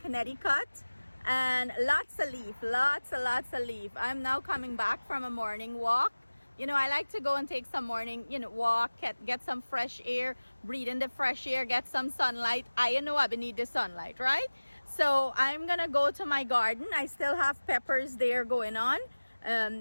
and lots of leaf. I'm now coming back from a morning walk. You know, I like to go and take some morning, walk, get some fresh air, breathe in the fresh air, get some sunlight. I know I need the sunlight, right? So I'm gonna go to my garden. I still have peppers there going on.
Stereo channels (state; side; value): inverted; both; correlation -1.00